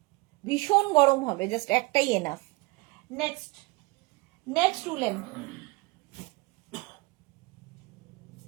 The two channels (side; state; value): left; quieter; 24.5 dB